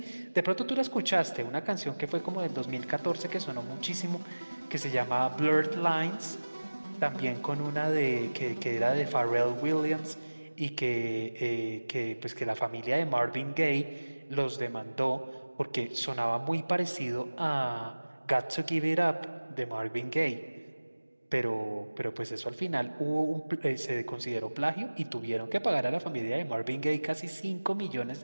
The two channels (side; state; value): both; inverted; correlation -1.00